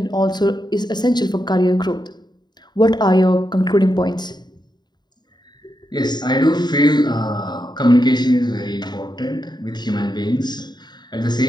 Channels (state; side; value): late; right; 0.21 ms